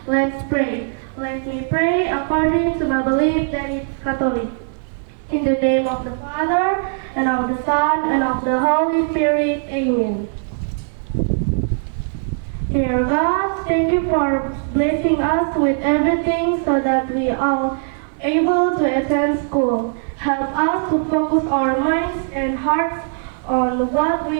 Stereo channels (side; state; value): left; silent; 56 dB below the other